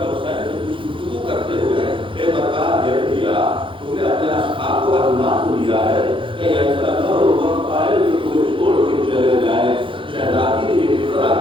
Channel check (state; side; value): late; left; 0.25 ms